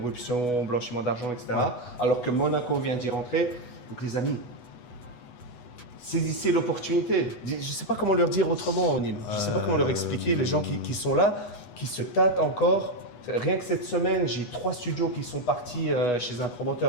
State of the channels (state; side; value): late; right; 8.2 ms